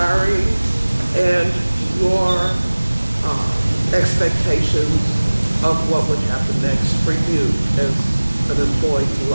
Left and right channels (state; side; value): inverted; both; correlation -1.00